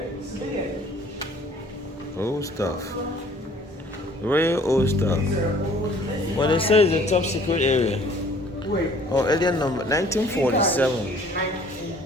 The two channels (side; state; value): both; normal; correlation 0.55